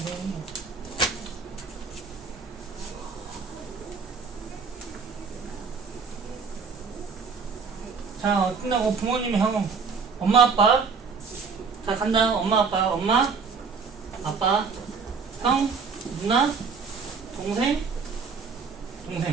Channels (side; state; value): left; quieter; 5.3 dB